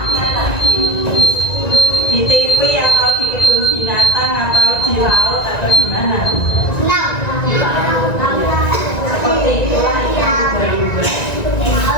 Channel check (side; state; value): right; late; 1.9 ms